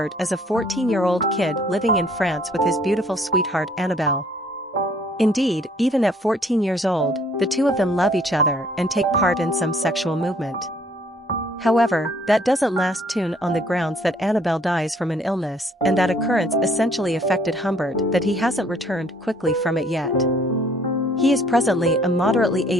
as a 14-year-old kid living in France with his beautiful sweetheart Annabelle. Indeed, even at 14 years old, the two of them love each other and take part in some sexual movement. However, that doesn't last on the grounds that Annabelle dies from an illness, and that occurrence essentially affected Humbert that he hasn't returned quickly from it yet. He is presently a moderately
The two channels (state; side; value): normal; both; correlation 0.61